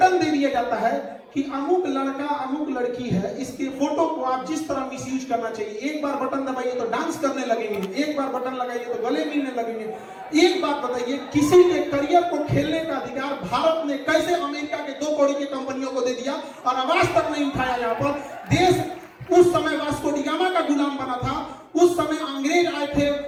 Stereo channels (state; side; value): identical; both; correlation 1.00